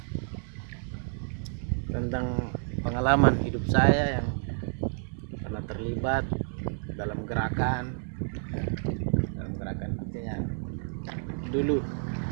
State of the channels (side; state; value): left; silent; 58 dB below the other